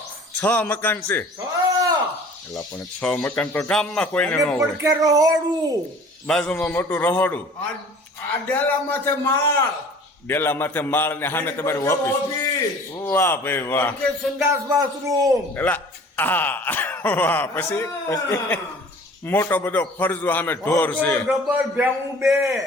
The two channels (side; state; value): both; normal; correlation 0.47